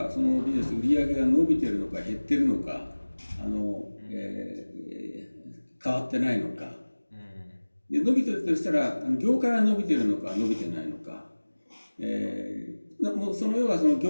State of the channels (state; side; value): inverted; both; correlation -1.00